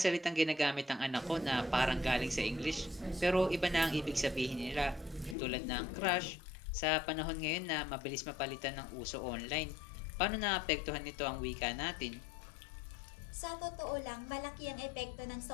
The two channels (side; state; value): right; drops out; at 5.4 s